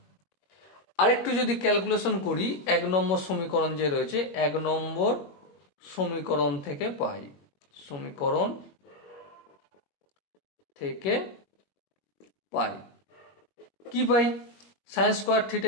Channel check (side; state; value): right; late; 21 ms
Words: আরেকটু যদি ক্যালকুলেশন করি, 1 নম্বর সমীকরণ যে রয়েছে, 1 নম্বর সমীকরণ থেকে পাই, সমীকরণ থেকে পাই কি পাই, sine square